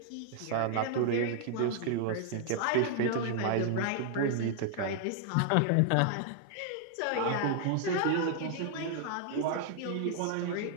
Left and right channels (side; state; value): both; different; correlation 0.00